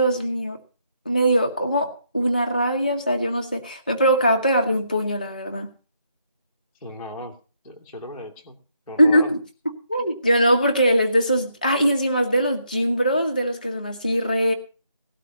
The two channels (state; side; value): inverted; both; correlation -0.75